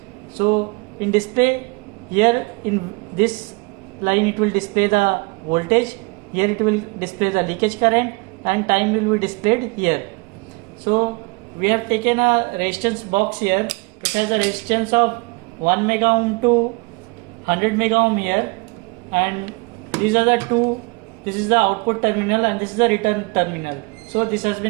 So in display here in this line it will display the voltage, here it will display the leakage current, and time will be displayed here. So we have taken a resistance box here. It has a resistance of 1 mega ohm to 100 mega ohm here, and these are the two. This is the output terminal and this is the return terminal. So this has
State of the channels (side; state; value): left; quieter; 27.9 dB